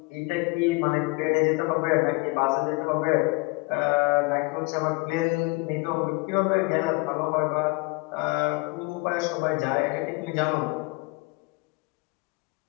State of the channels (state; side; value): quieter; right; 27.4 dB